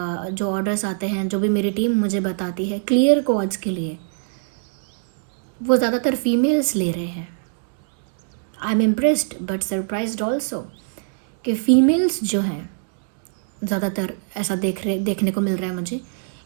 ऑर्डर्स आते हैं, जो भी मेरी टीम मुझे बताती है क्लियर क्वार्ट्ज के लिए, वो ज़्यादातर फीमेल्स ले रहे हैं। I am impressed but surprised also कि फीमेल्स जो हैं ज़्यादातर ऐसा देखने को मिल रहा है मुझे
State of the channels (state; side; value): silent; left; digital silence